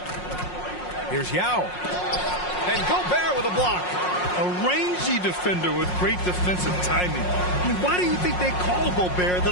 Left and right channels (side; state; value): right; late; 5.5 ms